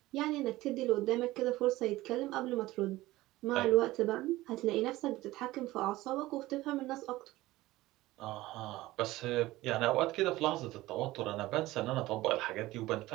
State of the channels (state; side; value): quieter; left; 17.7 dB